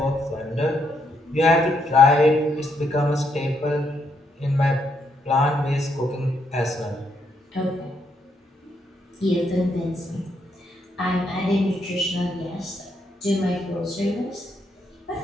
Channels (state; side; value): normal; both; correlation 0.76